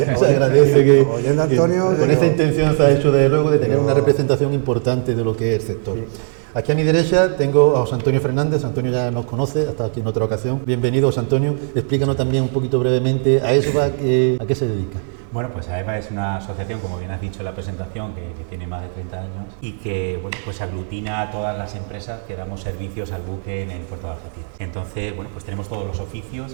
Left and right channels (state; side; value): silent; left; digital silence